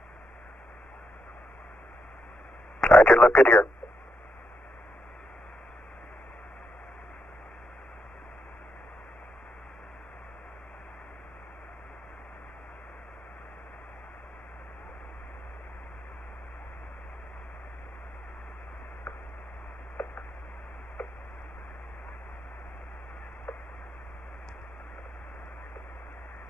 Roger, look good here.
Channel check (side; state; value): both; normal; correlation 0.80